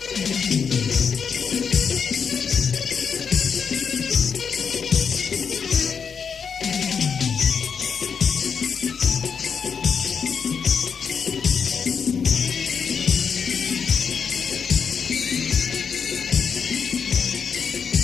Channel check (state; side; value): quieter; right; 6.4 dB